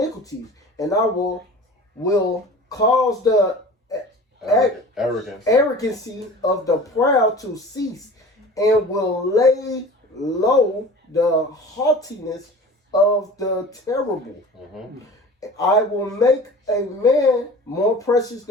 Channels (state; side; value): normal; both; correlation 0.40